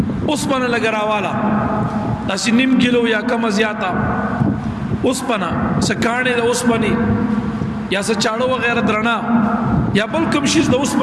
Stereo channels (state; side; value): identical; both; correlation 1.00